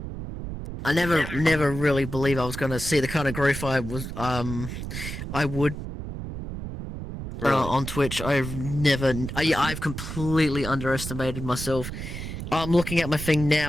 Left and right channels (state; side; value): noise; right; rumble, 7 dB below the sound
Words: I never really believed I was gonna see the kind of growth I would Really? on Twitch. I've completely underestimated myself. I'm looking at my thing